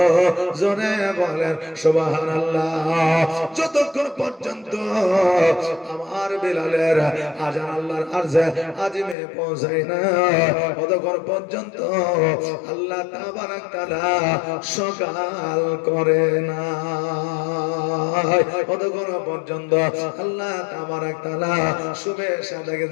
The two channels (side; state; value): right; drops out; at 9.2 s